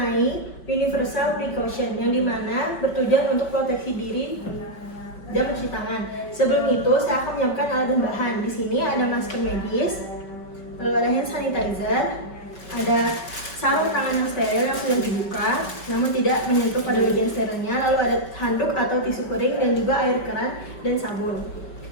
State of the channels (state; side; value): late; right; 5.2 ms